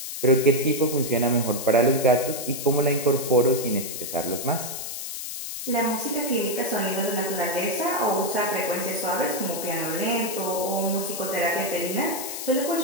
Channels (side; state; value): left; noise; hiss, 7 dB below the sound